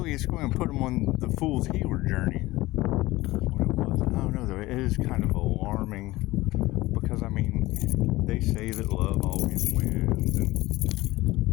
it's going to put them on the Fool's Healer journey. What it was. I don't know, though. It is kind of alarming. Because, I mean, they say that love always wins. And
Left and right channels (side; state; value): right; quieter; 18.8 dB